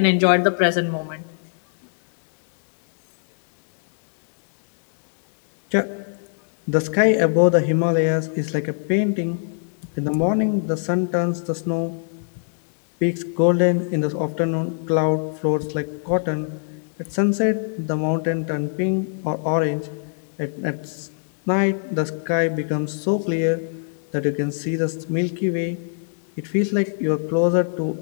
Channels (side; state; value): right; silent; digital silence